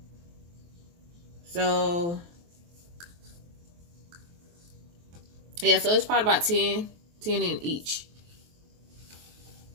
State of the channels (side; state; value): left; late; 23 ms